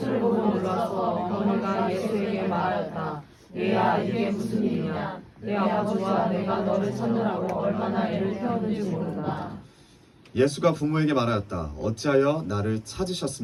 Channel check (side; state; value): both; identical; correlation 1.00